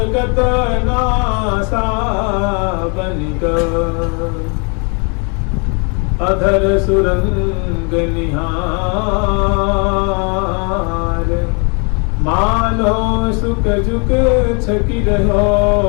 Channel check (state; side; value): quieter; right; 35.7 dB